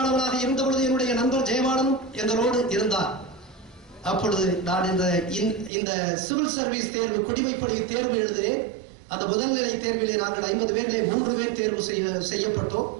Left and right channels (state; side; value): drops out; left; at 5.7 s